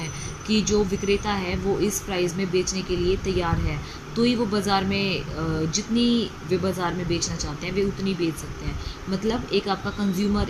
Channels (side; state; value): both; identical; correlation 1.00